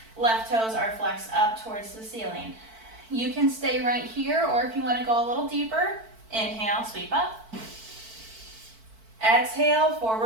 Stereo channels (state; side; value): late; left; 4.5 ms